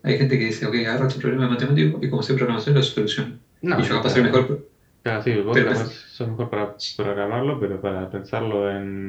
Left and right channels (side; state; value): both; identical; correlation 1.00